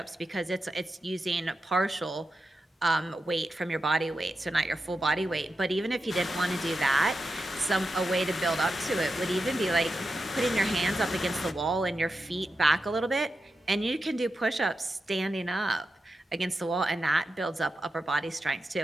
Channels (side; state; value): both; normal; correlation 0.90